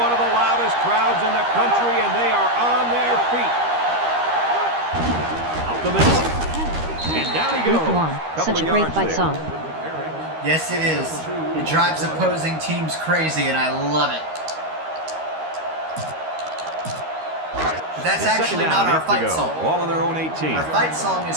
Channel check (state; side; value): late; left; 13 ms